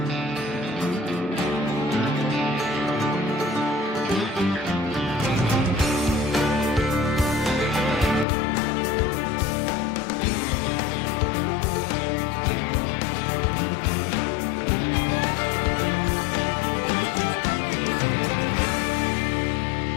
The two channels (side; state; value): right; drops out; at 8.2 s